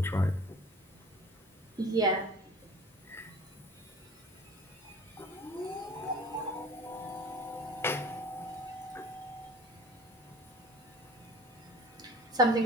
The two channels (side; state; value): both; normal; correlation 0.44